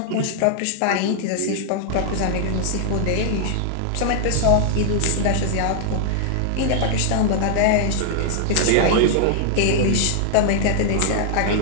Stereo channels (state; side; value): different; both; correlation -0.01